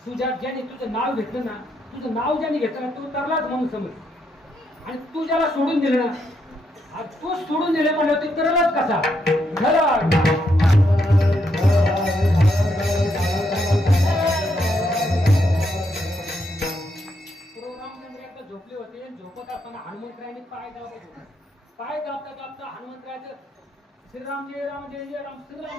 तुझ्या ज्याने तुझं नाव घेतलं ना तुझं नाव ज्याने घेतलं ना तू तरलाच म्हणून समज आणि तू ज्याला सोडून दिलं ना तू सोडून दिले म्हणलं तू तरलाच कसा झोपले होते झोपत असताना हनुमंतरायांनी पाय दाबता हनुमंतरायाचं श्रीराम जय राम जय जय राम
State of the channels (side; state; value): both; normal; correlation 0.78